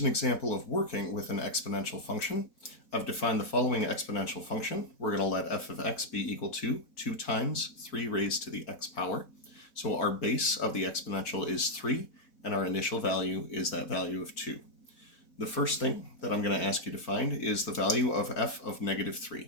example of working with an exponential function. I've defined the following exponential function. We're going to let f of x be equal to 2 times 3 raised to the x power. So our base of the exponential is 3, and our initial value is that value of 2. The first thing that I'm going to ask you to find is the value of f of negative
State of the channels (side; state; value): right; late; 4.1 ms